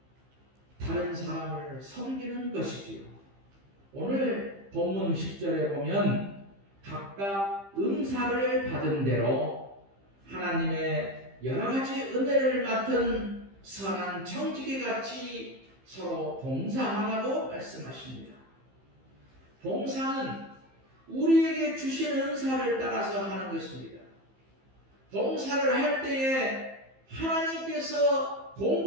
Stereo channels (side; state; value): left; late; 15 ms